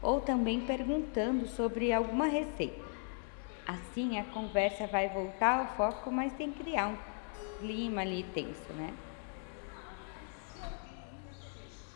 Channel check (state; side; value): silent; right; 53 dB below the other